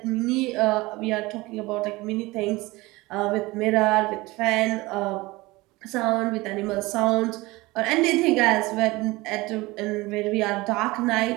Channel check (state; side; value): quieter; left; 21.4 dB